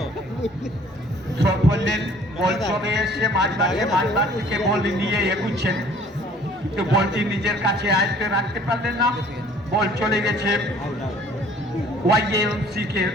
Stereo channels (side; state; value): both; normal; correlation 0.54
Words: থ্রো ফেললেন, বল চলে এসে মাঝবার থেকে বল নিয়ে এগুচ্ছেন, কিন্তু বলটি নিজের কাছে আয়ত্তে রাখতে পারলেন না। বল চলে গেছে ওয়াইএমসি কে